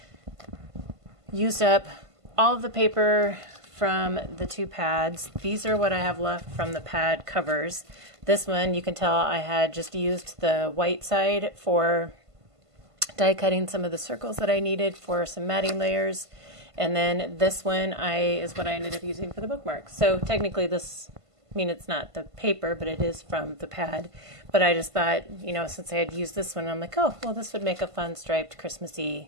used up all of the paper from the 2 pads. These are what I have left from the pad covers. This one, you can tell I had just used the white side for die cutting some of the circles that I needed for some matting layers, and then this one is what I ended up using for the bookmarks. So technically this, I mean, it's not the paper, but it is from the pad. But I just thought, you know, since I had used this one, I'm like, oh, well, this would make a fun striped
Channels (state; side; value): late; left; 1.5 ms